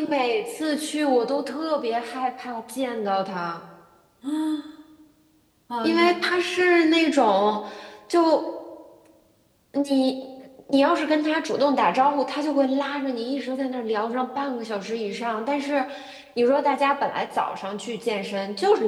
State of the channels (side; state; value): both; identical; correlation 1.00